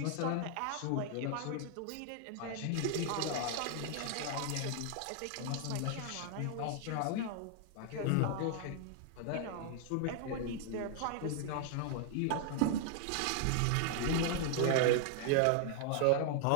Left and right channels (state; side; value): different; both; correlation 0.00